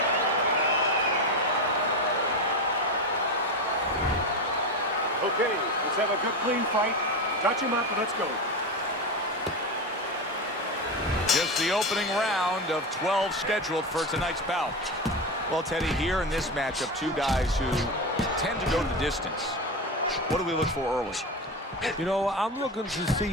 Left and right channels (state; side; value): normal; both; correlation 0.19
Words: Okay, let's have a good, clean fight. Touch him up and let's go. Just the opening round of 12 scheduled for tonight's bout. Well, Teddy, here in this matchup, two guys who tend to go the distance. What do we look for early? You know, I'm looking to see